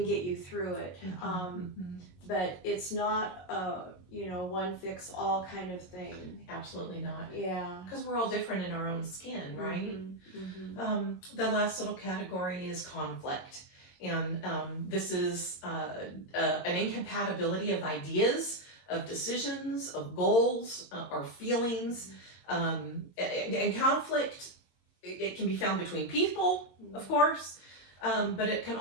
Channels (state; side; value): late; right; 22 ms